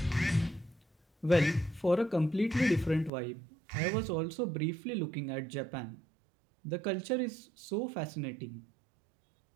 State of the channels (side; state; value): left; drops out; at 3.1 s